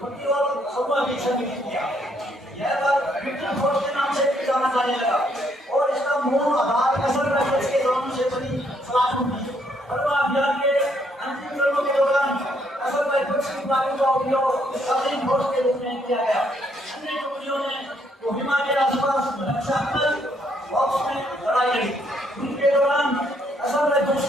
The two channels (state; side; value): normal; both; correlation 0.71